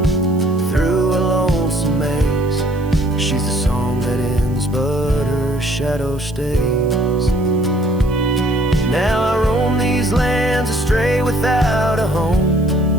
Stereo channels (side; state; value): right; noise; hiss, 26 dB below the sound